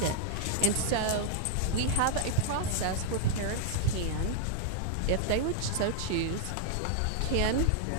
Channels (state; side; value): different; both; correlation -0.01